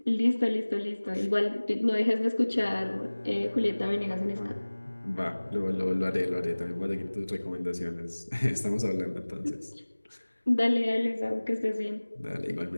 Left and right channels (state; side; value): inverted; both; correlation -1.00